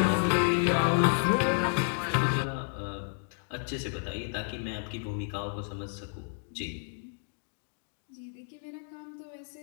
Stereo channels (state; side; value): silent; right; digital silence